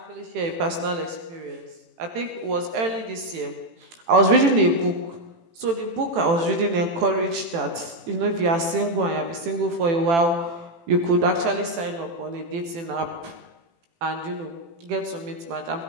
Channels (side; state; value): left; late; 18 ms